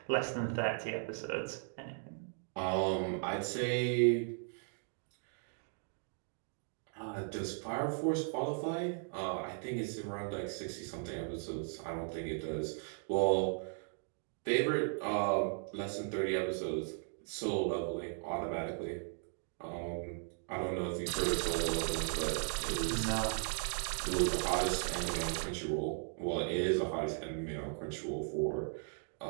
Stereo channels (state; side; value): silent; left; 53 dB below the other